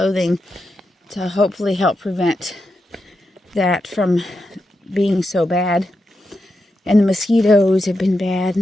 to hopefully help prevent that from being so bad. And the mosquitoes have been bad,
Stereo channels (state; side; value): normal; both; correlation 0.87